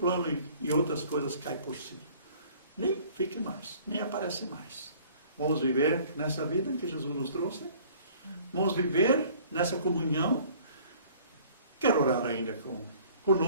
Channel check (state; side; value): inverted; both; correlation -0.53